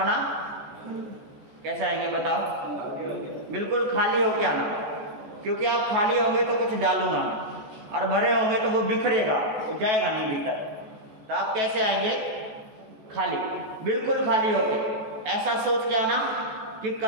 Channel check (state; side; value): late; left; 14 ms